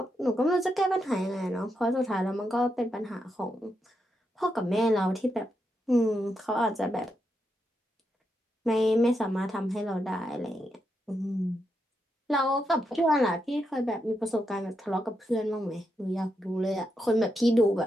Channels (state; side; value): normal; both; correlation 0.83